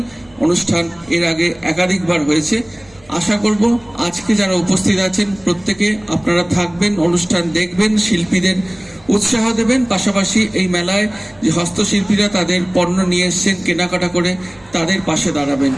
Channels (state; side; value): noise; right; hum, 28 dB below the sound